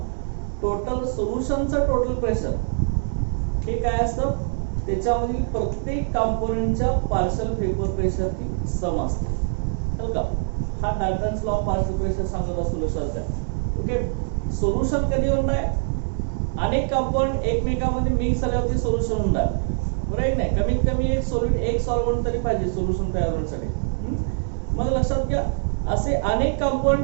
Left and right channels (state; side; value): silent; left; digital silence